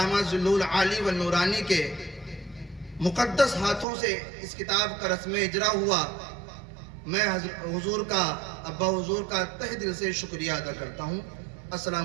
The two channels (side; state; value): left; drops out; at 3.9 s